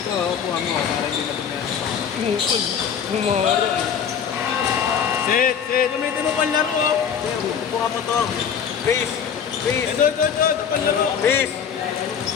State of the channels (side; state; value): right; quieter; 7.6 dB